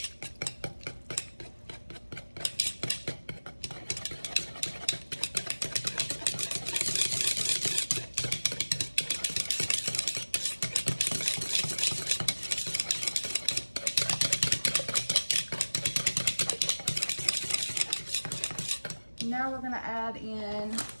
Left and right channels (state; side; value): inverted; both; correlation -1.00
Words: Now we're going to add in,